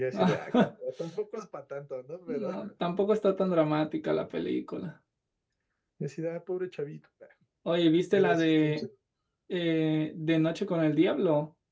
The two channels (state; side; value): identical; both; correlation 1.00